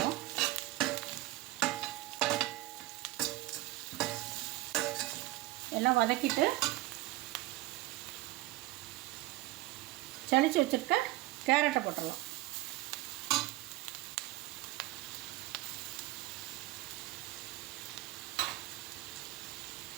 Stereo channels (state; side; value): quieter; left; 17.9 dB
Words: எல்லாம் வதக்கிட்டு சளிச்சு வச்சுருக்க கேரட்டை போட்டுடலாம்.